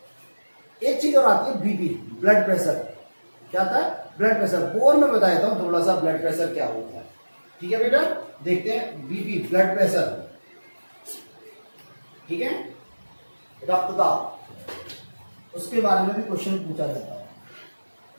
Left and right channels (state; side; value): inverted; both; correlation -1.00